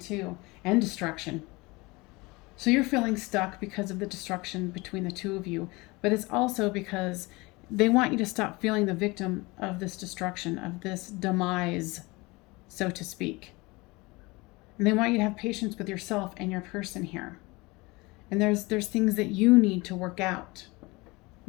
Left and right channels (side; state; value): right; quieter; 23.9 dB